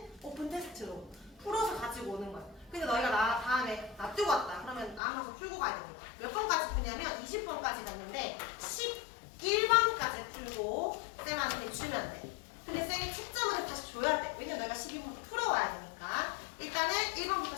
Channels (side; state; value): right; drops out; at 5.0 s